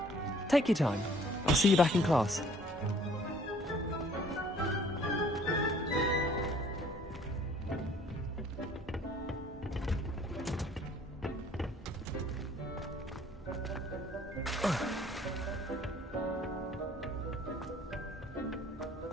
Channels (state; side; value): normal; both; correlation 0.57